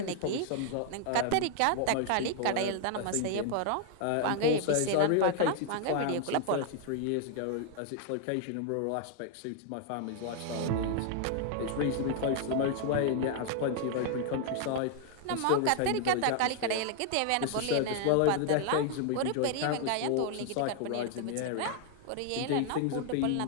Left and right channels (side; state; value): both; different; correlation 0.00